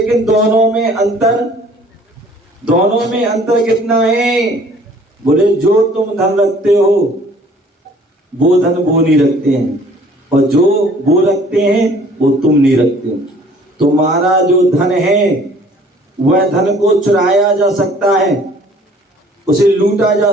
दोनों में अंतर कितना है? बोले जो तुम धन रखते हो वो धन वो नहीं रखते हैं, और जो वो रखते हैं वो तुम नहीं रखते हो। तुम्हारा जो धन है वह धन को चुराया जा सकता है, उसे लूटा जा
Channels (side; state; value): both; normal; correlation 0.54